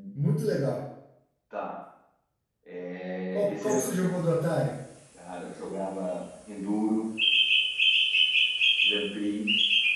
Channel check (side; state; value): both; identical; correlation 1.00